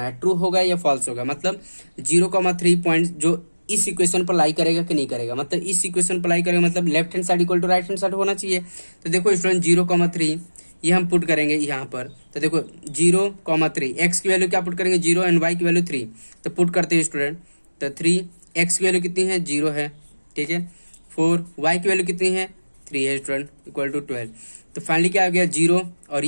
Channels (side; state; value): both; inverted; correlation -1.00